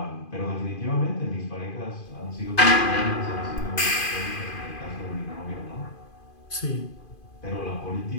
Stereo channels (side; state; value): right; late; 2.5 ms